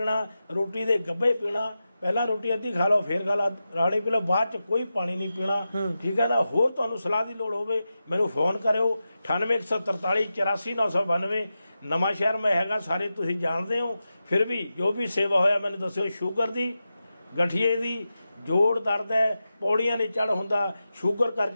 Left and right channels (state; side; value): inverted; both; correlation -0.91